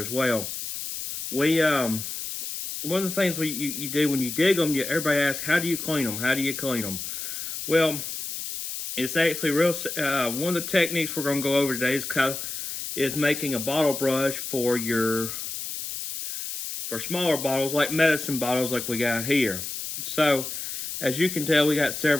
as well. We One of the things you do when you dig them, everybody asks, how do you clean them? How do you clean them? Well, it's actually real. One of the techniques we're going to go over today is making a bottle brush for smaller bottles, like medicine bottles, like we got here. So, as you can tell, we got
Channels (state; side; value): noise; left; hiss, 6 dB below the sound